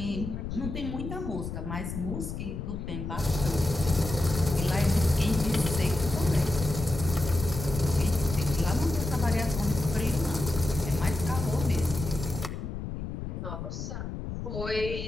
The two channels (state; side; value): noise; left; rumble, 6 dB below the sound